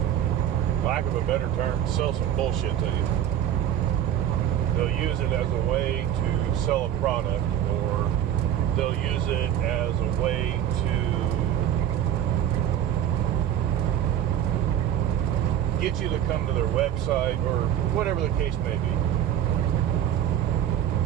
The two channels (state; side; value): quieter; left; 10.4 dB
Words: lack of a better term, sell some bullshit to you. They'll use it as a way to sell a product, or they'll use it as a way to get you to come to their website, or whatever the case may be.